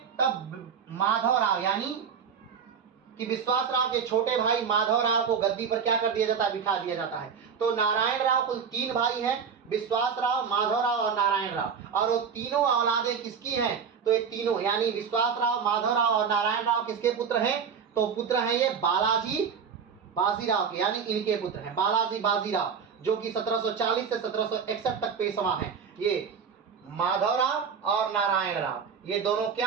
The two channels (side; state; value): left; quieter; 6.6 dB